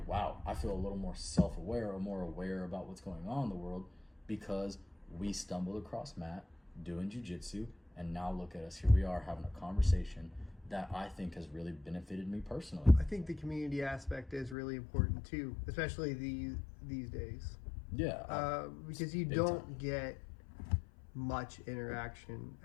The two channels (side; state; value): right; drops out; at 14.6 s